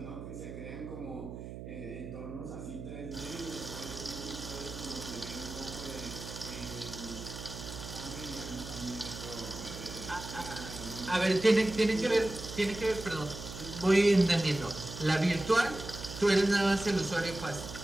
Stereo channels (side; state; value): right; noise; hum, 10 dB below the sound